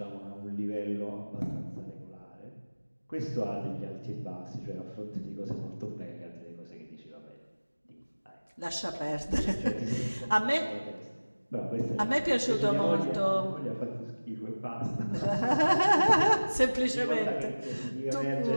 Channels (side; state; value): both; inverted; correlation -1.00